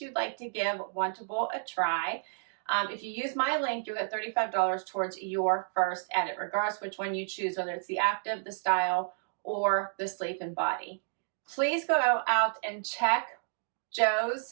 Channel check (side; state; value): left; silent; digital silence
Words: you'd like to give Wantable a try. If you use my link, you'll get $35 towards your first edit, regardless which one you choose, whether it's the active, the style, or the sleep and body. Please go out and check